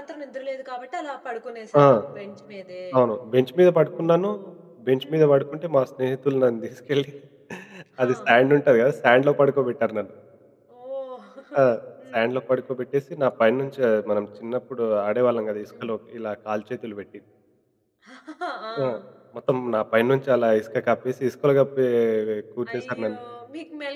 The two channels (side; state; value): both; identical; correlation 1.00